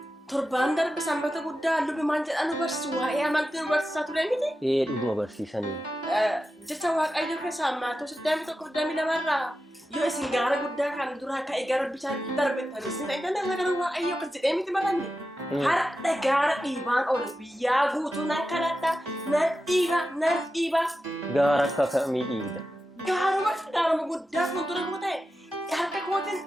Torbaan darbe sanbata guddaa lubi maal jedhan nu barsiisu waa'ee amantii nu barsiisaa ture miti? Dhuguma barsiisanii. Jecha Waaqayyoo keessaa maatos 22 yoo isin gaara guddaa kan duraa ka'e gara bishaan darbettanii isin eegganna gara Waaqayyoo akkas jedhee miti baranne. Har'a gaara dhiibaan oolu biyyaa guutuu nan kadhadha nan dhiiba. Gaara akka kamii dhiibda? Gaaruma guddaa fuuldura koo ta'e harka kootiin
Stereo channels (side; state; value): both; normal; correlation 0.91